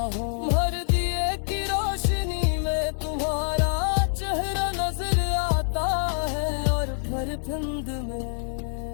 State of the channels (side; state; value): right; silent; digital silence